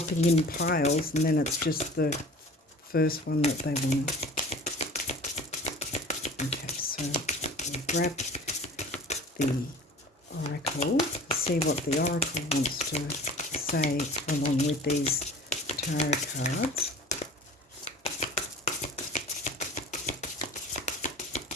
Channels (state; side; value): normal; both; correlation 0.42